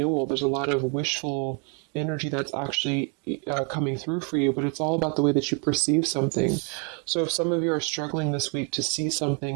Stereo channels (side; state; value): left; quieter; 36.3 dB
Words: There's a lot of wishful energy that's actually coming through for you, but it's all about the way that you perceive something. So if some of you are struggling this week to see